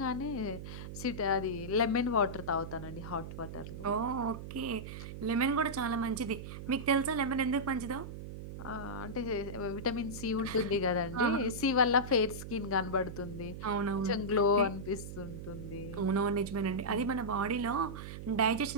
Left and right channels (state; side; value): noise; right; hum, 9 dB below the sound